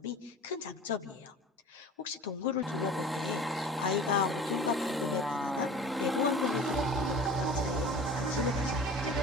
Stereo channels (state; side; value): normal; both; correlation 0.41